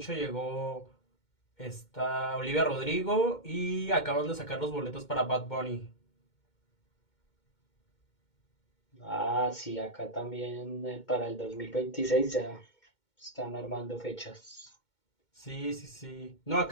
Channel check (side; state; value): right; late; 2.2 ms